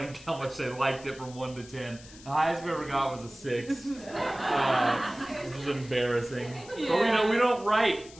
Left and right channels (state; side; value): noise; left; hiss, 20 dB below the sound